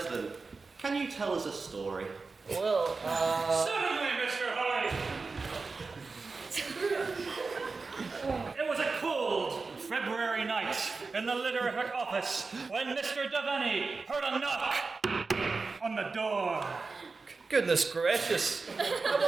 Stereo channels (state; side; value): quieter; left; 4.2 dB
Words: can you tell us a story? Well, Certainly, Mr. Hoy! It was a cold February night in the literary office when Mr. Devaney heard a knock on the door. Goodness gracious. I